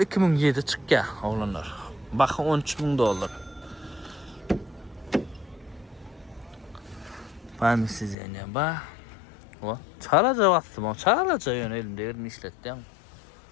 çık ya oğlanlar. Bakın $13.000. Ben mi size yani bak. O çağlaca bastım o çağlaca yönelimde yerini işlettim.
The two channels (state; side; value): drops out; right; at 8.2 s